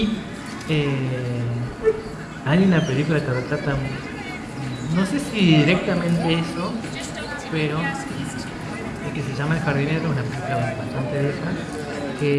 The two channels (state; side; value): identical; both; correlation 1.00